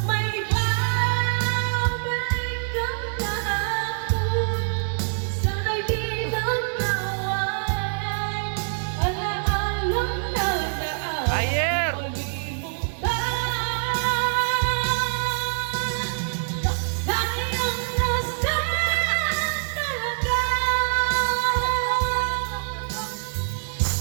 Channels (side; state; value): left; silent; 62 dB below the other